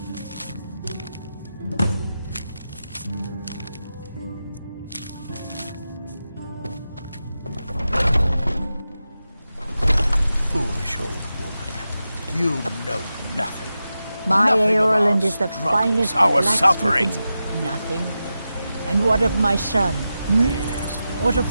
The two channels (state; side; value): inverted; both; correlation -0.91